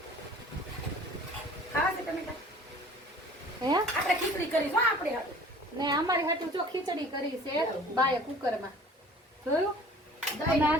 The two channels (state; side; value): normal; both; correlation 0.48